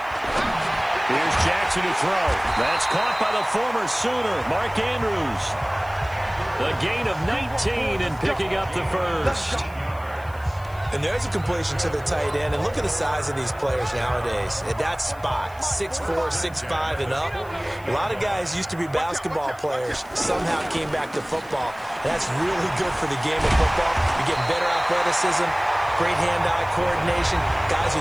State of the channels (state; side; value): noise; left; hiss, 26 dB below the sound